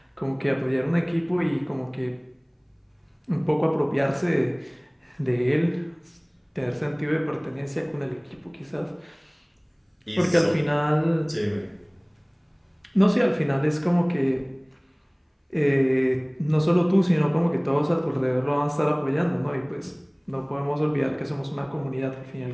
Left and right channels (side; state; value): both; identical; correlation 1.00